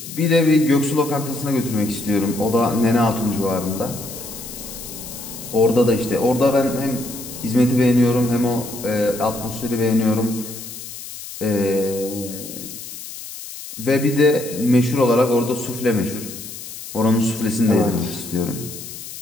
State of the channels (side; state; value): left; noise; hiss, 12 dB below the sound